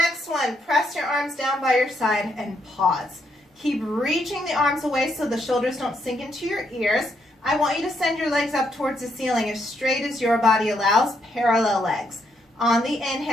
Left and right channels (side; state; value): both; normal; correlation 0.76